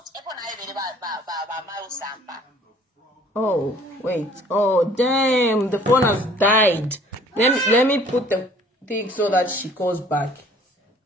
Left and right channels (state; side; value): normal; both; correlation 0.55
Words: Oh, wait. Oh, damn. The phone has died. Let me put the thing so that she calls back.